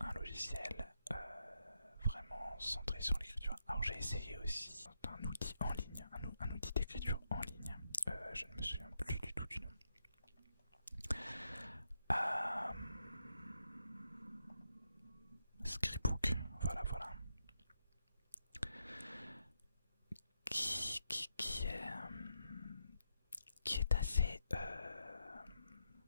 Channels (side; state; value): both; inverted; correlation -0.82